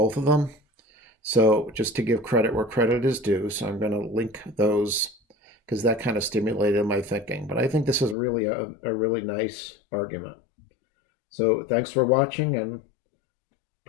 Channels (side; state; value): right; drops out; at 8.2 s